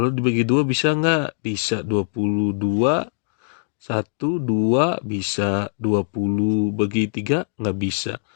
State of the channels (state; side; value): silent; right; 64 dB below the other